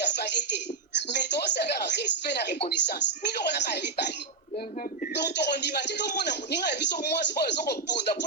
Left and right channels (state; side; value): quieter; left; 4.1 dB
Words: fali te mais toosala respect na reconnaissance biloko naka ya mibali donc tokondima te tomona moninga ya biso mwasi oyo ezokobunda